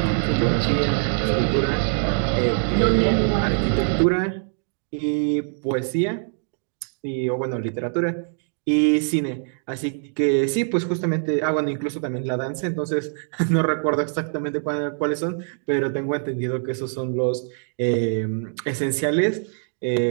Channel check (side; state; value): left; silent; 63 dB below the other